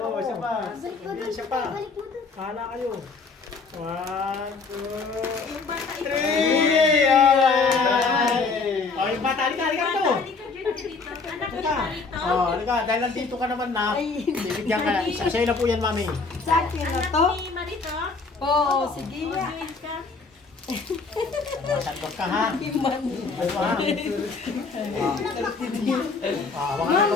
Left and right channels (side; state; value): right; quieter; 4.4 dB